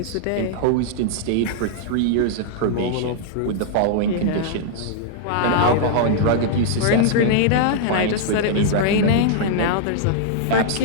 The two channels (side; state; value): both; different; correlation -0.01